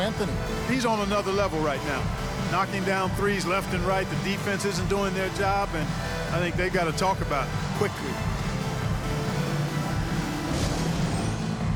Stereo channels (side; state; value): both; identical; correlation 1.00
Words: He's on another level right now. Knocking down threes left and right. The defense isn't doing their job, and I think they got to talk about it quickly.